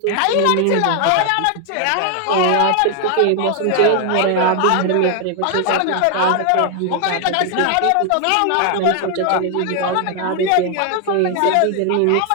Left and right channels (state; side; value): different; both; correlation 0.00